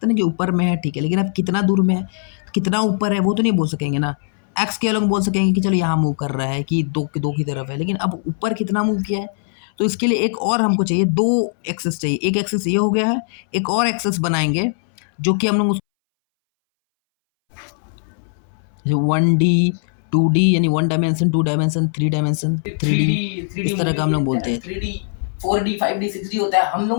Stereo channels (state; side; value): silent; right; 64 dB below the other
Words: ना कि ऊपर में है, ठीक है? लेकिन अब कितना दूर में है, कितना ऊपर है, वो तो नहीं बोल सकेंगे ना। एक्स के अलग बोल सकेंगे कि चलो यहाँ मूव कर रहा है कि दो की तरफ है, लेकिन अब ऊपर कितना मूव किया है, तो इसके लिए एक और हमको चाहिए, दो एक्सेस चाहिए। एक एक्सेस ये हो गया है, एक और एक्सेस बनाएंगे जो कि हम लोग 1D 2D यानी 1 डायमेंशन 2 डायमेंशन 3 डायमेंशन 3D, इस तरह का हम लोग बोलते हैं। 3D 4D 5D 6D होता है, हम